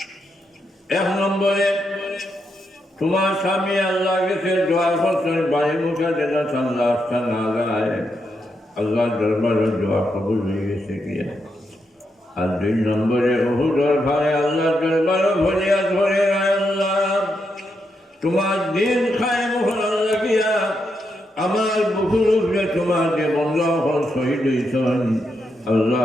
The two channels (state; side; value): normal; both; correlation 0.82